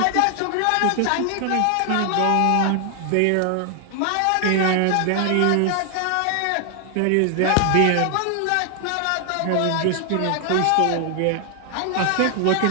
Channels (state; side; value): different; both; correlation 0.00